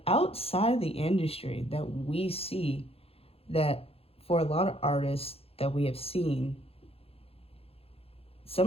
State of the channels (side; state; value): right; late; 0.28 ms